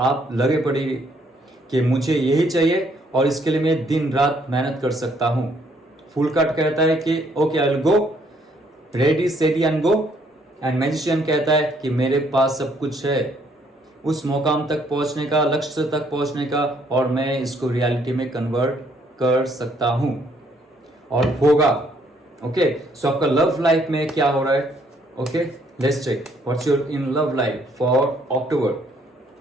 लगे पड़े कि मुझे यही चाहिए और इसके लिए मैं दिन रात मेहनत कर सकता हूं। फुल कार्ड कहता है कि okay I will go, ready steady and go, and magician कहता है कि मेरे पास सब कुछ है उस मुकाम तक पहुंचने का, लक्ष्य तक पहुंचने का, और मैं इसको रियलिटी में कन्वर्ट कर सकता हूं, और होगा। ओके, सो आपका लव लाइफ में क्या हो रहा है? Okay, let's check what's your in love life for October.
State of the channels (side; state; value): both; normal; correlation 0.67